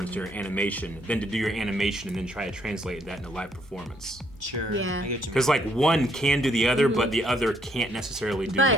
to your animation than to do your animation and then try to translate that into live performance. Sure. Yeah. I get you. Because like one can do the other, but the other can't necessarily do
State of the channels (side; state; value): both; normal; correlation 0.70